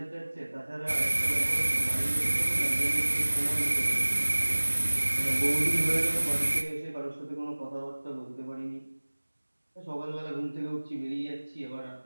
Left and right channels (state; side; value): inverted; both; correlation -1.00